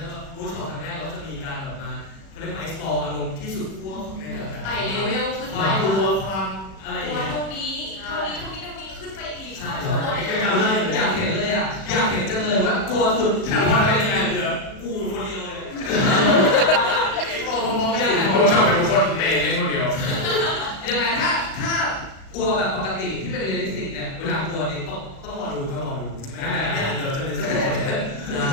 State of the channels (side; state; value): right; late; 36 ms